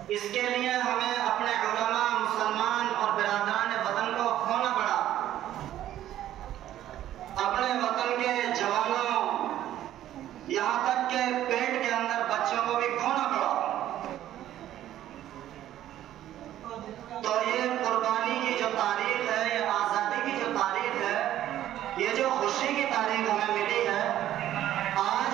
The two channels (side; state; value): left; quieter; 12.5 dB